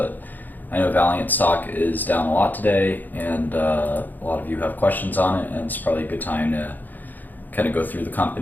I know Valeant stock is down a lot today, and a lot of you have questions on it, and it's probably a good time to kind of go through the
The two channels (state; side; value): late; right; 0.085 ms